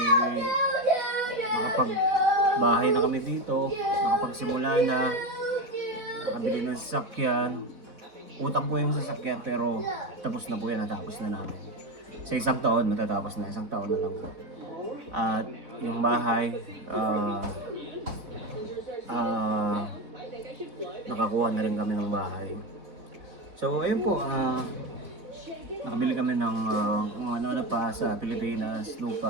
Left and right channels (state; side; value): late; left; 4.1 ms